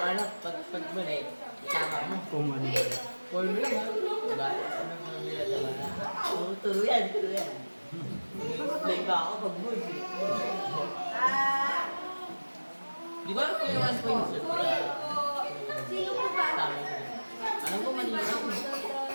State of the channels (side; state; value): both; inverted; correlation -1.00